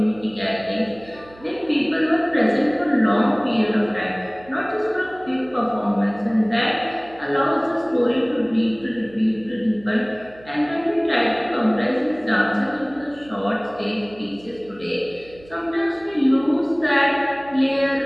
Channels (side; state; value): right; noise; hum, 23 dB below the sound